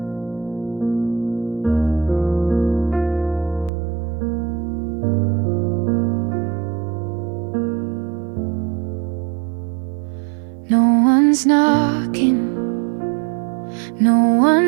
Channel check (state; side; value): drops out; left; at 3.7 s